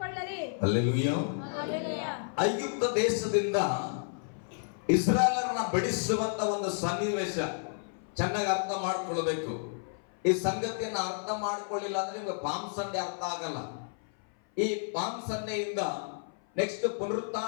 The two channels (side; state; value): right; silent; 55 dB below the other